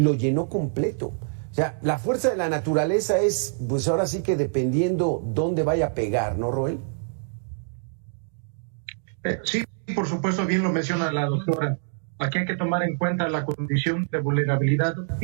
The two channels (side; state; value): left; silent; digital silence